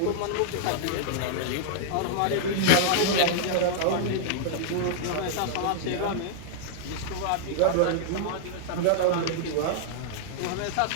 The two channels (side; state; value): both; different; correlation -0.01